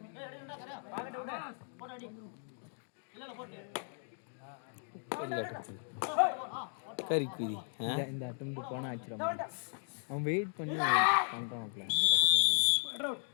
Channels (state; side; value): silent; right; 54 dB below the other